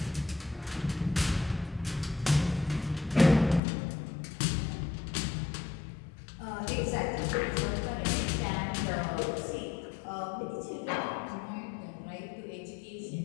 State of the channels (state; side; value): drops out; right; at 3.6 s